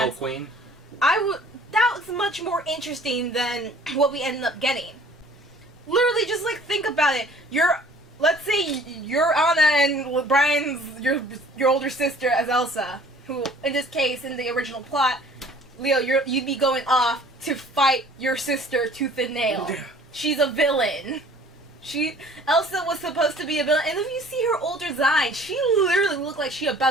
Queen? that was much more interesting than what we ended up getting. Literally, just like think about it. Let's say you're Anna and Brian's your older sister as Elsa, who in this case in the original plot, Leo, you'd be going off to fight your sister tooth and nail. Yeah. She's a villain. Elsa was supposed to be a villain, and if you see her older design, she literally looked like she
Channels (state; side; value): normal; both; correlation 0.52